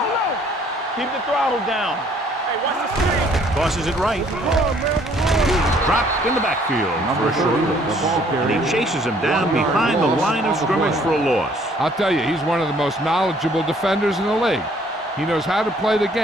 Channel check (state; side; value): normal; both; correlation 0.61